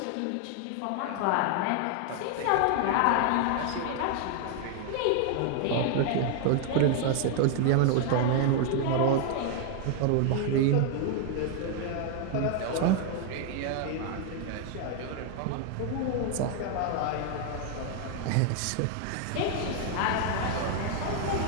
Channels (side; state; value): both; different; correlation 0.00